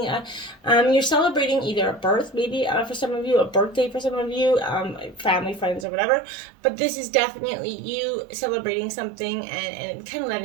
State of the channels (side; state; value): left; drops out; at 5.9 s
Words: you're celebrating either a birth, maybe for some of you, a birthday for some of you, family, friends, or whatever. But this is definitely you celebrating something and kind of